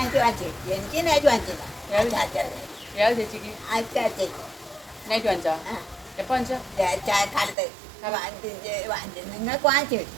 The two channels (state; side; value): drops out; left; at 7.6 s